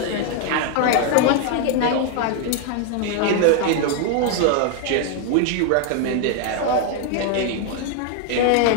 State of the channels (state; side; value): different; both; correlation 0.01